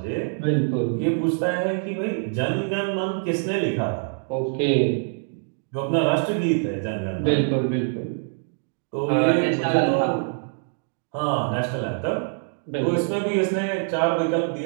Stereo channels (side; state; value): left; silent; 61 dB below the other